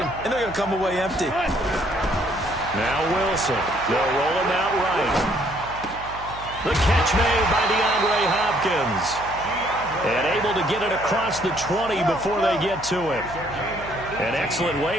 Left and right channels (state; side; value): noise; right; hum, 16 dB below the sound